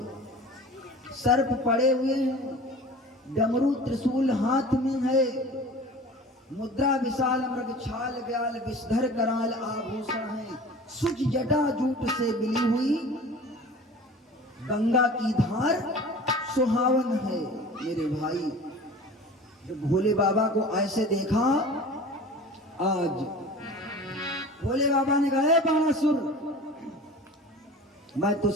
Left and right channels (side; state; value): both; normal; correlation 0.40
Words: सर्प पड़े हुए हैं, डमरू त्रिशूल हाथ में है, मुद्रा विशाल मृग छाल ब्याल विषधर कराल आभूषण है। सुच जटा जूट से मिली हुई गंगा की धार सुहावन है। मेरे भाई, जब भोले बाबा को ऐसे देखा, आज भोले बाबा ने कहा, बाणासुर, मैं